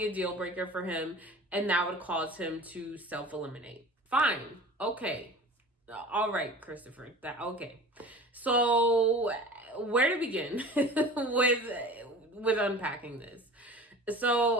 a deal breaker for him and that would cause him to self-eliminate. Fine. Okay. All right, Christopher. Okay. So where to begin with unpacking this?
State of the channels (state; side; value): normal; both; correlation 0.39